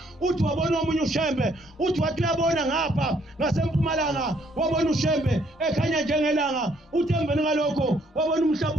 uthi wabona omunye uShembe uthi wathi uyabona ngapha ngasempumalanga wabona uShembe ekhanya njengelanga uthi emveni ngalokho wabona umhlaba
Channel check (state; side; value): normal; both; correlation 0.67